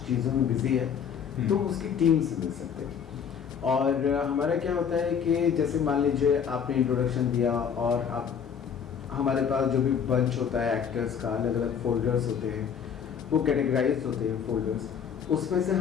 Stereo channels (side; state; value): right; quieter; 7.4 dB